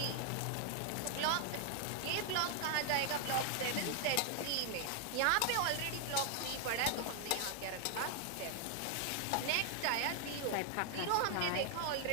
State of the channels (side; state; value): both; different; correlation 0.00